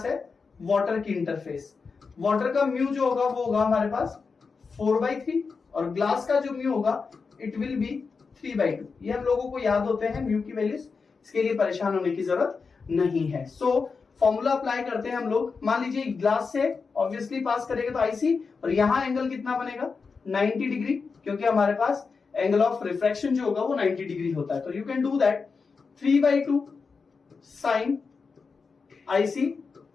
है वाटर की इंटरफेस. वाटर का म्यू जो होगा वो होगा हमारे पास 4/3 और ग्लास का जो म्यू होगा इट विल बी 3/2. ये हम लोगों को याद होते हैं म्यू की वैल्यूज. इसके लिए परेशान होने की जरूरत नहीं है. सो फॉर्मूला अप्लाई करते हैं हम लोग. मान लीजिए ग्लास से ऑब्वियसली पास करेगा तो आईसी, और यहां एंगल कितना बनेगा 90 डिग्री, क्योंकि हमारे पास एंगल ऑफ रिफ्रैक्शन जो होगा वो 90 डिग्री होता है. तो you can do that 3/2 sine IC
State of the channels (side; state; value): right; quieter; 4.9 dB